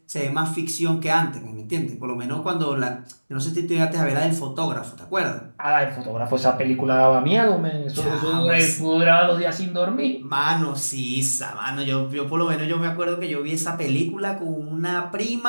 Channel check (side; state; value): both; inverted; correlation -1.00